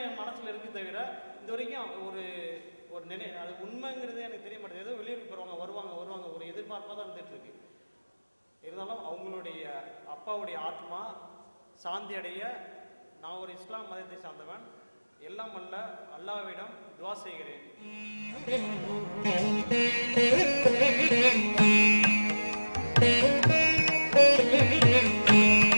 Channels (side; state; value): both; inverted; correlation -1.00